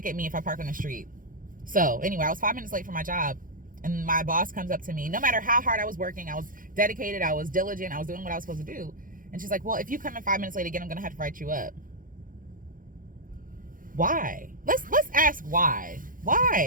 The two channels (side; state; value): left; late; 0.40 ms